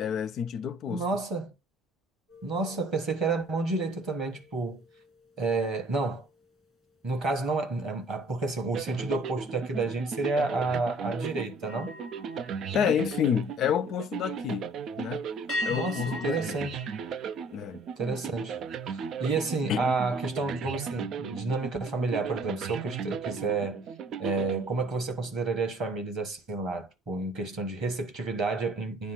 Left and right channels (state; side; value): normal; both; correlation 0.55